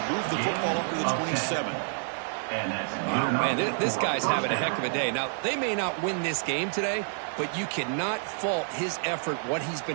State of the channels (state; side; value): silent; left; 59 dB below the other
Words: move the football up to the 27. And that's Oh, man, this guy's having a heck of a day. Now, they may not win this game today, but you cannot fault his effort, what he's